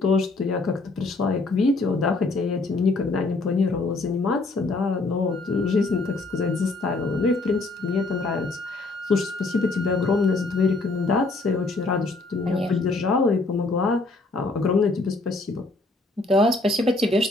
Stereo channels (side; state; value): right; quieter; 3.3 dB